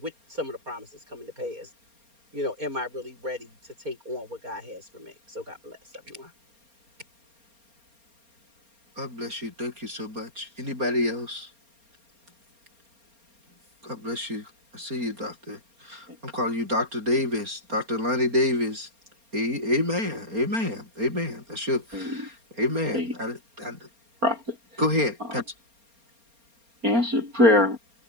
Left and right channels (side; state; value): left; late; 4.3 ms